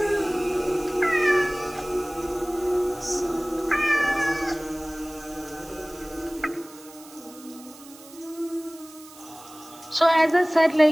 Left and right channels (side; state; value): right; noise; hiss, 21 dB below the sound